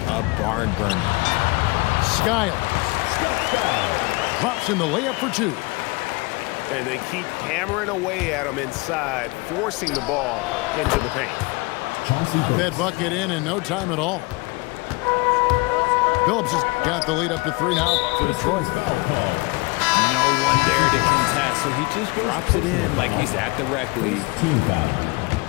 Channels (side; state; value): right; quieter; 25.8 dB